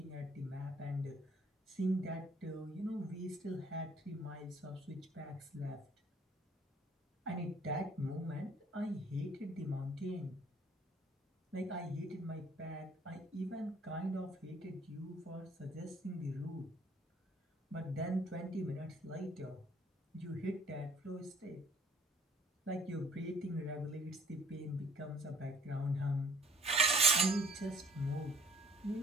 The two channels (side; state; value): both; normal; correlation 0.58